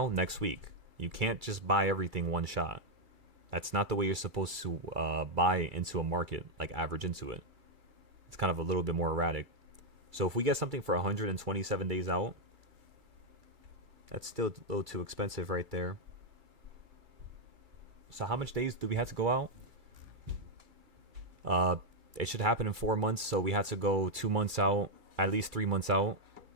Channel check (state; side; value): late; left; 2.3 ms